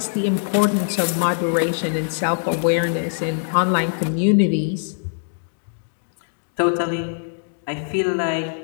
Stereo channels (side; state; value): right; silent; digital silence